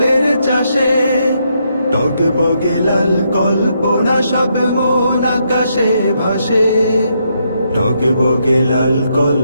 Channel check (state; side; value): inverted; both; correlation -0.77